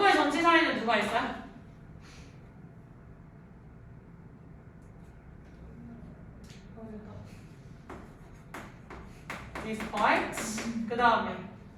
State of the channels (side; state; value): both; identical; correlation 1.00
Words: 전치사에는 누가 있어요? despite. 그 다음에